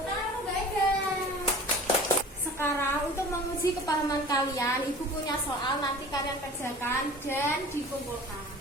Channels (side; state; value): both; normal; correlation 0.42